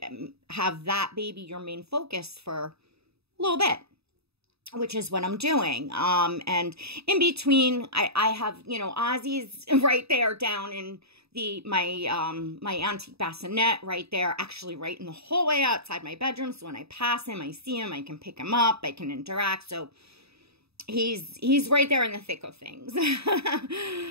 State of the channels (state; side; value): late; left; 0.78 ms